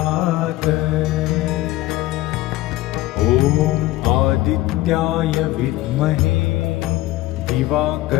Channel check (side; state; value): right; quieter; 16.8 dB